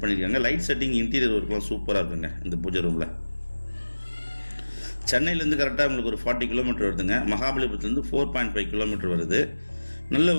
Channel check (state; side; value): inverted; both; correlation -1.00